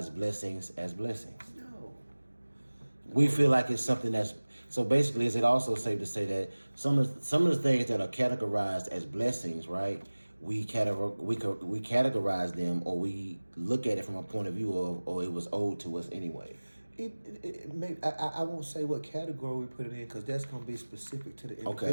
blessings as blessings? No. We feel like it's something that's so. Basically, is it also safe to say that some of the things that are categorized as blessings, right? We categorize them, or we look at it from a point of view of, or it was owed to us anyway. It may, I won't say what category we put it in because that's going to be specific to the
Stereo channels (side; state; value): both; inverted; correlation -1.00